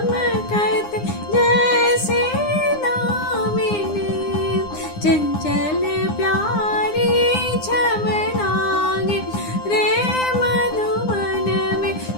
जैसे दामिनी चंचल प्यारी छम लागे रे मधुबन में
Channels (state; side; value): late; right; 9.8 ms